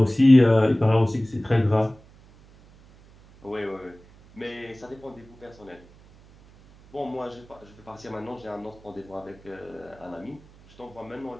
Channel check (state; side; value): noise; right; hum, 25 dB below the sound